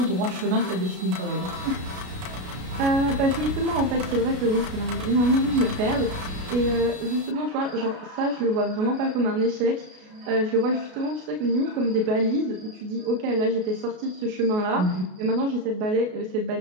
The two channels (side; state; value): left; late; 33 ms